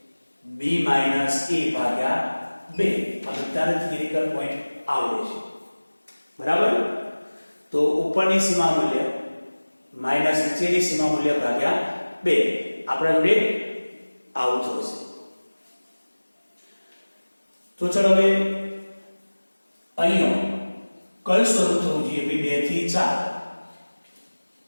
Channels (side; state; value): both; inverted; correlation -1.00